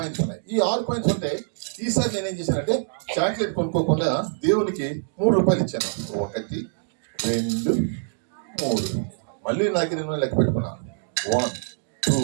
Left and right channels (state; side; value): silent; left; digital silence